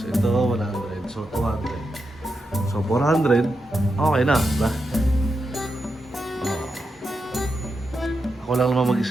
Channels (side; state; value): both; normal; correlation 0.87